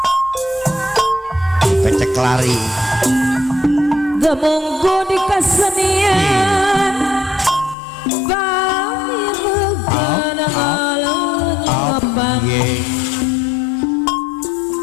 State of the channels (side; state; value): right; drops out; at 7.8 s